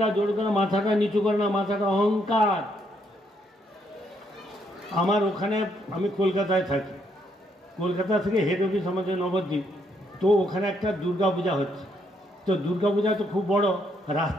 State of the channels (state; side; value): normal; both; correlation 0.73